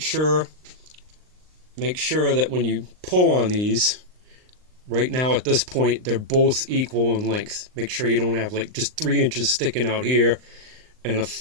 sure that when you pull on these, right now at this point they're both equal in length. Make sure you don't have like just 3 inches sticking out here and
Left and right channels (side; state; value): left; late; 39 ms